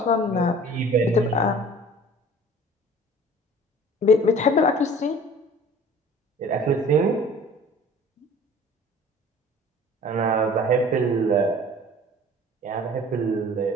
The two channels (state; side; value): normal; both; correlation 0.46